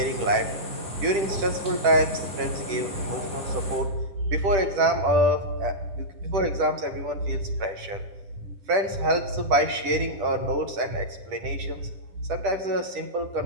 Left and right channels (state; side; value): late; left; 10 ms